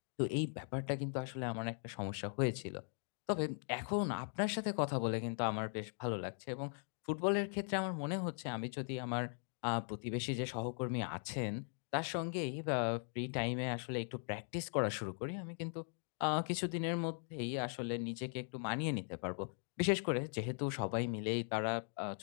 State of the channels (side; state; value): right; silent; 51 dB below the other